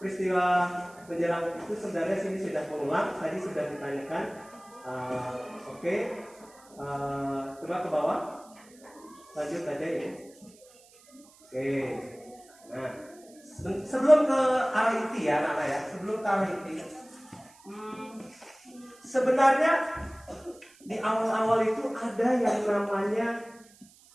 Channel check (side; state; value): right; noise; hiss, 26 dB below the sound